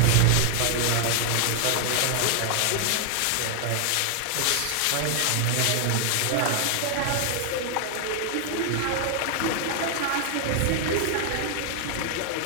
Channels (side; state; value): both; different; correlation 0.00